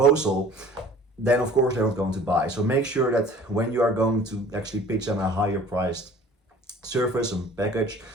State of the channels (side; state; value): both; normal; correlation 0.48